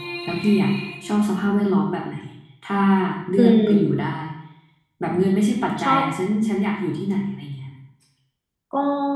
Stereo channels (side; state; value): both; identical; correlation 1.00